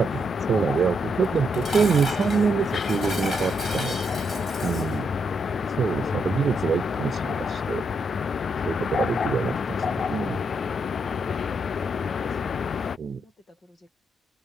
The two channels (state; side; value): normal; both; correlation 0.78